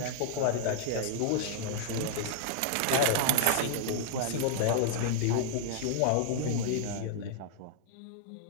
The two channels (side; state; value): both; different; correlation -0.01